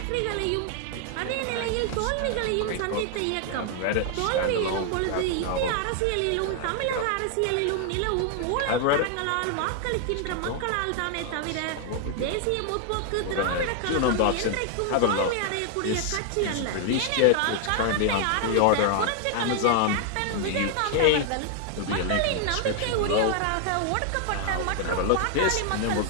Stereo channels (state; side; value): different; both; correlation 0.00